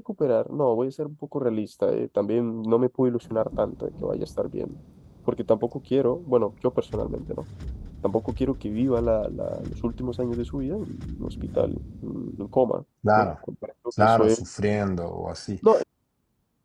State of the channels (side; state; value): both; identical; correlation 1.00